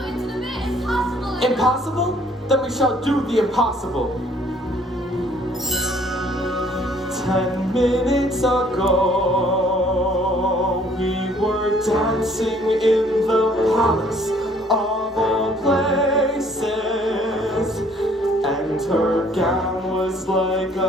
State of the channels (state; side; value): normal; both; correlation 0.60